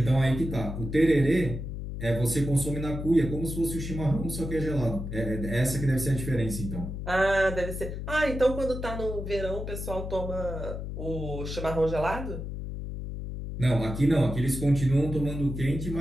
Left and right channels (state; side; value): noise; left; hum, 6 dB below the sound